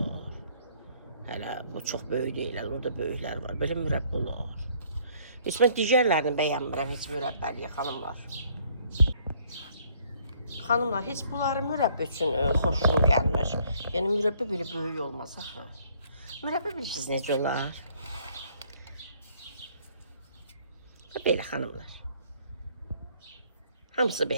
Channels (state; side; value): inverted; both; correlation -0.62